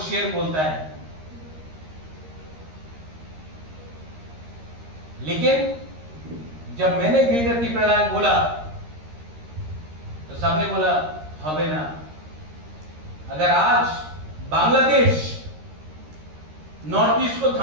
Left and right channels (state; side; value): late; left; 13 ms